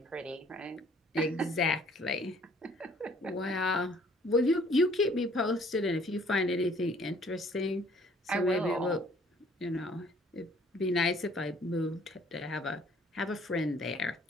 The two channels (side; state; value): both; normal; correlation 0.58